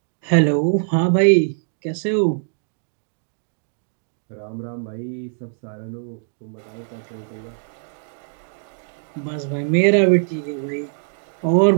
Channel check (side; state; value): left; silent; digital silence